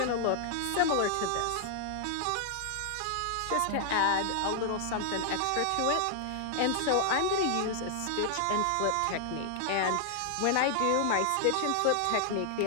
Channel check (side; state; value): both; different; correlation 0.00